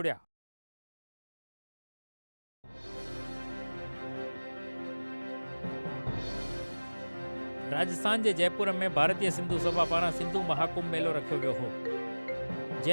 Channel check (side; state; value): both; inverted; correlation -1.00